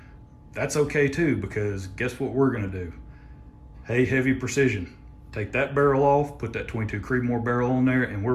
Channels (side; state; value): both; identical; correlation 1.00